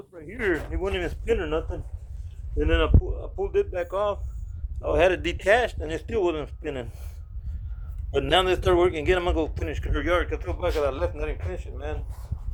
right here. It wouldn't even spin or nothing. And then I pulled it back off. I had it detached and it still wasn't spinning. But now they start working again. I'm gonna go finish her yard because I feel bad because I left and I didn't finish it, man.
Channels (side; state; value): both; identical; correlation 1.00